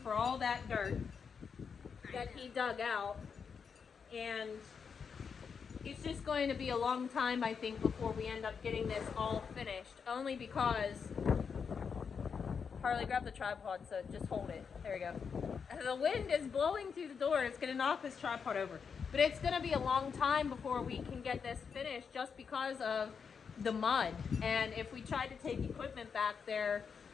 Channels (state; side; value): quieter; right; 6.2 dB